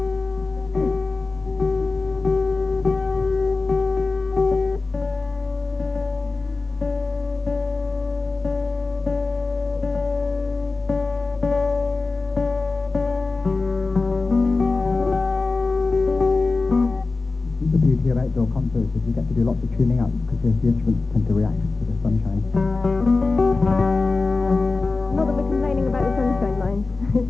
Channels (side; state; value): right; quieter; 3.7 dB